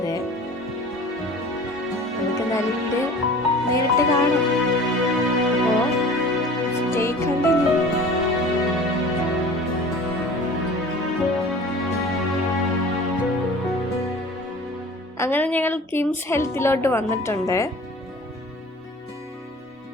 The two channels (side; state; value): both; normal; correlation 0.43